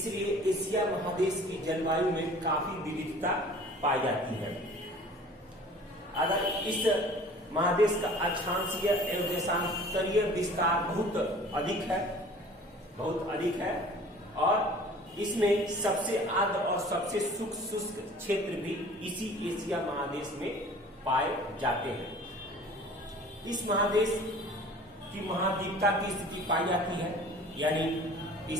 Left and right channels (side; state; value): both; normal; correlation 0.47